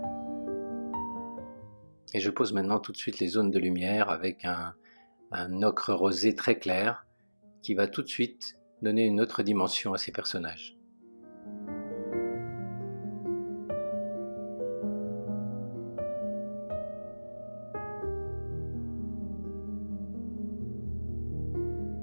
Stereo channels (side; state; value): both; inverted; correlation -1.00